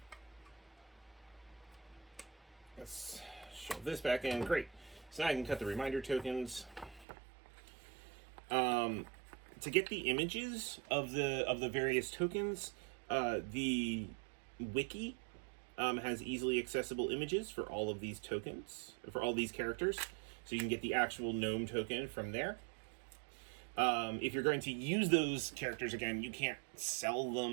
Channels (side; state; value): left; drops out; at 7.1 s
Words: Let's shove this back in. Great. So now I can cut the reminder tokens. To get the images of the various tokens, the wiki has easily accessible images for all of these tokens, for all these characters. So you can get the actual gnome token from there. If you're going to use those characters again, you can't sell